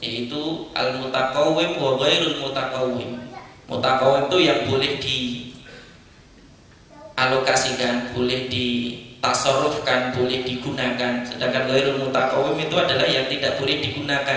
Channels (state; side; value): identical; both; correlation 1.00